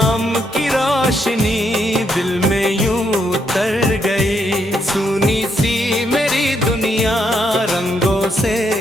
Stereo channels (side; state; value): both; normal; correlation 0.76